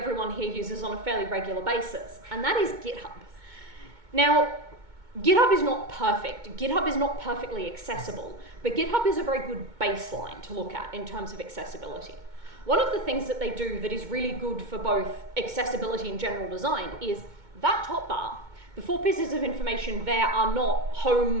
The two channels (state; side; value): late; left; 2.2 ms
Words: here uses on a fairly regular basis, and that is GitHub. Now, GitHub is not perfect. GitHub is not perfectly accessible, but GitHub is a very good baseline to look at in terms of accessibility. One of the things that they do that is really good for both accessibility and general design is that top bar. The 4 pieces of information there are not